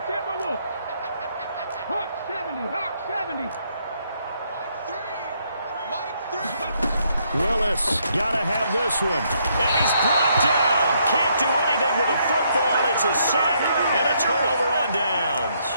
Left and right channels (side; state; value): both; inverted; correlation -0.73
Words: Timberwolves. Hawk 70, Hawk 70. Willis, gotta have this one. And he's brought down. Can't do anything with a football. It's a sack and a turnover on downs.